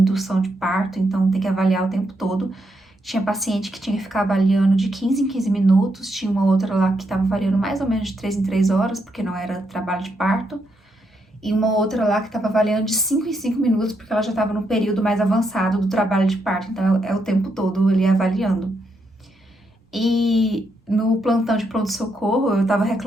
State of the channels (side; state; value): both; normal; correlation 0.79